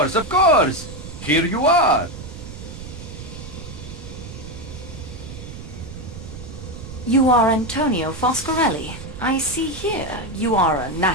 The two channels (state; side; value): noise; right; rumble, 12 dB below the sound